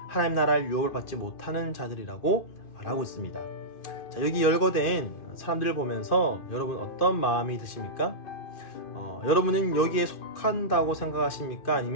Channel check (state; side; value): late; right; 2.5 ms